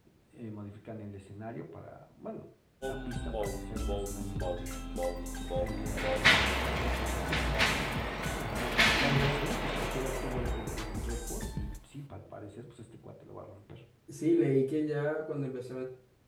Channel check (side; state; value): both; identical; correlation 1.00